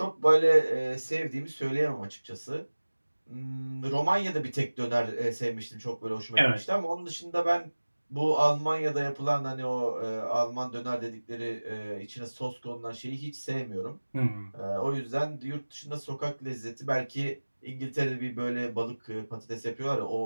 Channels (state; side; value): inverted; both; correlation -1.00